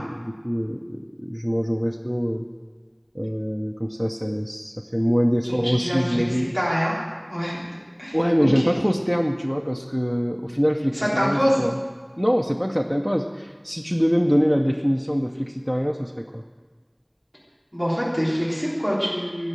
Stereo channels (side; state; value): both; identical; correlation 1.00